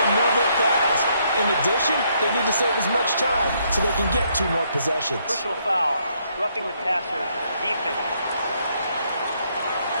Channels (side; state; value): both; inverted; correlation -0.72